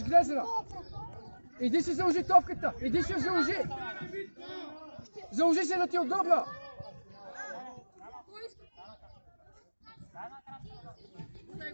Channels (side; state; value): both; inverted; correlation -1.00